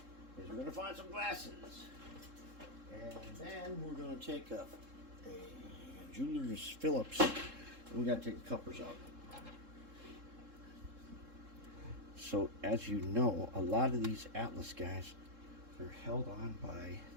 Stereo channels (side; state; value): left; late; 3.7 ms